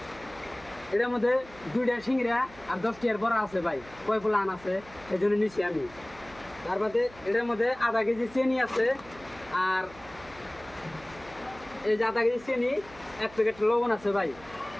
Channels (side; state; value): right; noise; hum, 21 dB below the sound